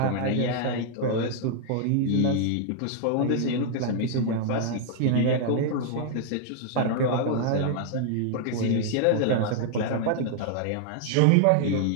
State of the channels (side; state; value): both; different; correlation 0.00